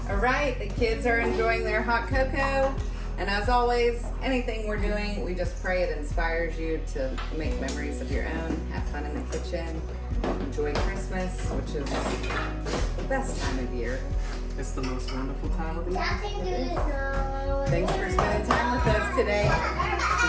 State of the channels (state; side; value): identical; both; correlation 1.00